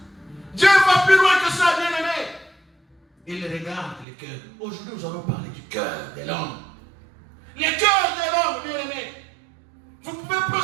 Dieu va plus loin que ça, bien-aimé. Il regarde le cœur. Aujourd'hui, nous allons parler du cœur de l'homme. Le cœur de l'homme, bien-aimé. Vous pouvez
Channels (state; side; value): drops out; left; at 4.0 s